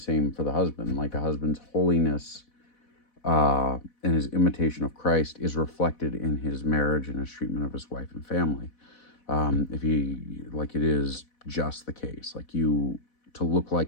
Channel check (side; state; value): right; late; 4.1 ms